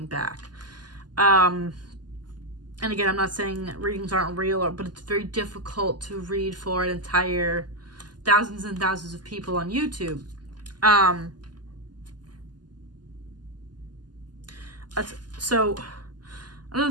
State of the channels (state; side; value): late; left; 0.70 ms